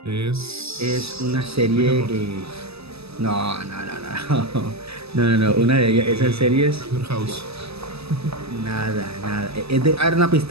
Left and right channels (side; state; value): left; late; 0.78 ms